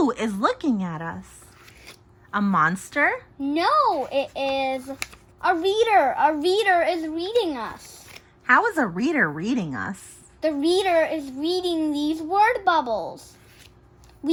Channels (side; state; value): both; identical; correlation 1.00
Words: is looking at us? A monster? No, it is a reader. A reader is reading us. How is a reader reading us? The reader is reading these word bubbles.